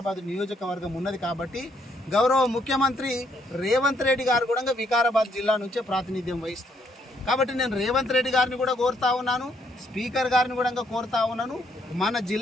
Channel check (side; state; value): both; normal; correlation 0.71